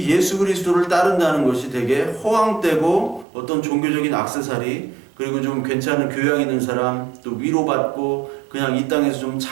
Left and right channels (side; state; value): left; drops out; at 3.2 s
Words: 예수 그리스도를 따른다는 것이 되게 허황되고 어떤 종교적인 액세서리, 그리고 좀 괜찮은 교양 있는 사람, 또 위로받고 그냥 이 땅에서 좀